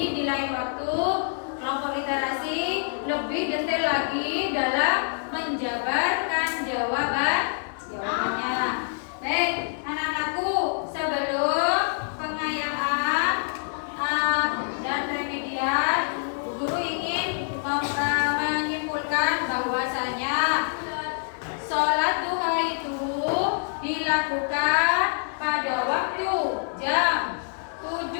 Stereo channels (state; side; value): silent; right; digital silence